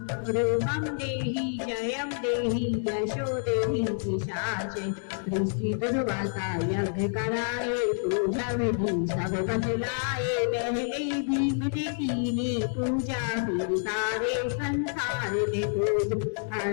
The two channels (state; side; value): silent; right; 59 dB below the other